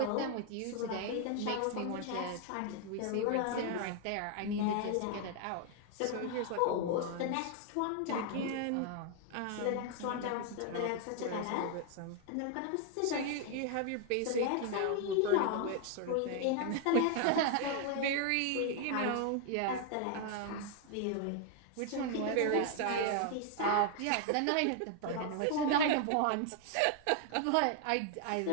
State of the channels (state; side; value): different; both; correlation 0.00